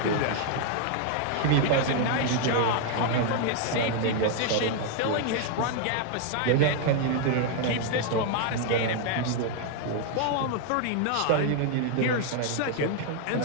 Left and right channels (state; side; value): different; both; correlation 0.00